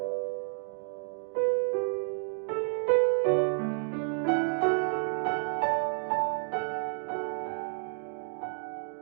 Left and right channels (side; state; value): left; silent; digital silence